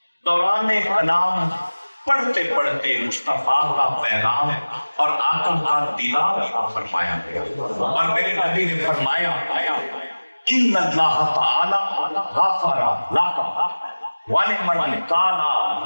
دوران کلام پڑھتے پڑھتے مصطفیٰ کا پیغام اور آقا کا دیدار فرمایا گیا، اور میرے نبی نے فرمایا ان اللہ تعالی غفر لک ولمن کان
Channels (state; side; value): inverted; both; correlation -1.00